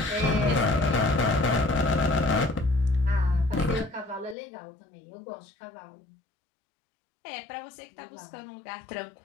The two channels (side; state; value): right; drops out; at 4.4 s